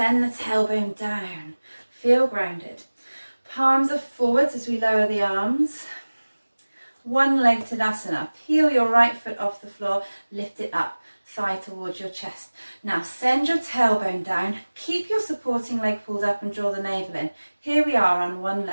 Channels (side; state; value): both; inverted; correlation -1.00